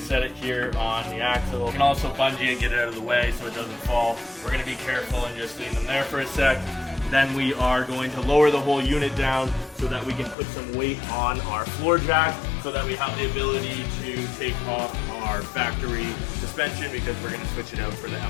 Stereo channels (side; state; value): right; drops out; at 10.4 s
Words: it here on the axle. You can also bungee and get it out of the way so it doesn't fall. We're gonna be careful and just leave them there for a sec. Then we are going to lower the whole unit down so that we can put some weight on our floor jack so that we have the ability to take off our factory suspension because we're going to switch it out for the